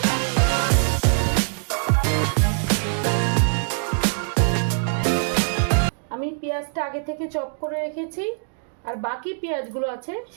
আমি পেঁয়াজটা আগে থেকে চপ করে রেখেছি, আর বাকি পেঁয়াজগুলো আছে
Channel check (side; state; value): left; silent; digital silence